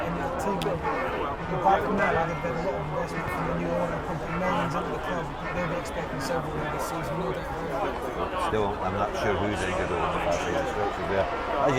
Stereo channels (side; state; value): both; identical; correlation 1.00